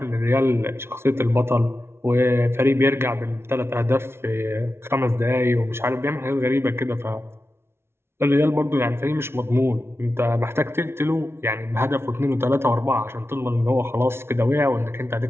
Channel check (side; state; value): left; late; 0.12 ms